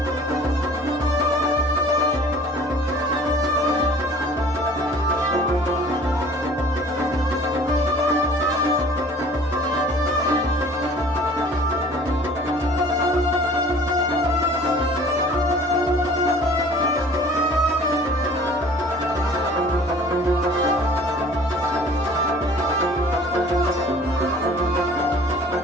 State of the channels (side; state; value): both; normal; correlation 0.49